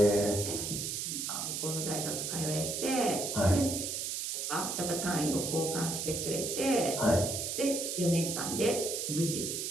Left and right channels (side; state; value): right; noise; hiss, 3 dB below the sound